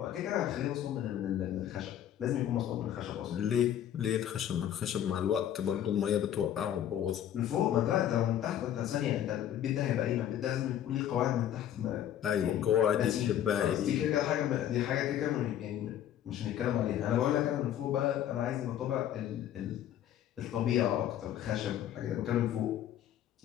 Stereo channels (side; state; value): right; quieter; 10.8 dB